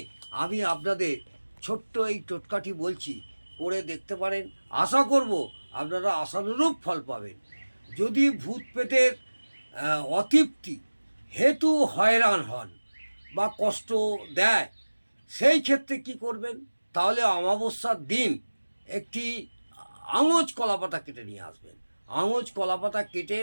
আমি আপনাদের ছোট্ট এই টোটকাটি বলছি, করে দেখতে পারেন। আশা করব আপনারা আশানুরূপ ফল পাবেন। যদি ভূত প্রেতের অতৃপ্তি হেতু হয়রান হন বা কষ্ট দেয়, সেই ক্ষেত্রে কি করবেন? তাহলে অমাবস্যার দিন একটি আঙুচ কলাপাতা কেটে নিয়ে আসবেন। আঙুচ কলাপাতা কেটে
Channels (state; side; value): inverted; both; correlation -1.00